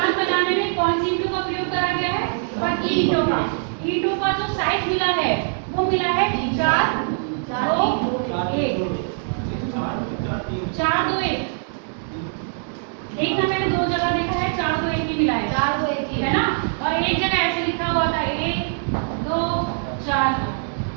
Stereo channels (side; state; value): left; silent; digital silence